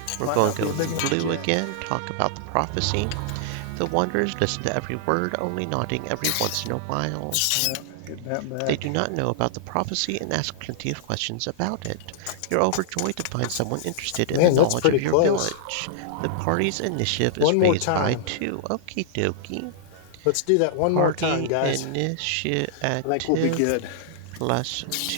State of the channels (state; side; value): different; both; correlation -0.01